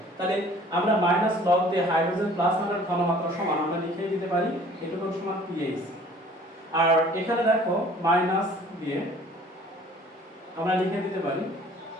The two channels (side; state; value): both; normal; correlation 0.52